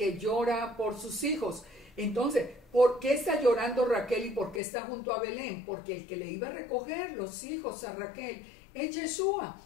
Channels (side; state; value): right; drops out; at 4.6 s